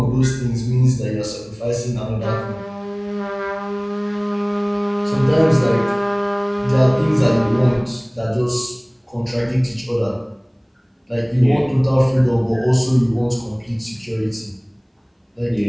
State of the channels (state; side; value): identical; both; correlation 1.00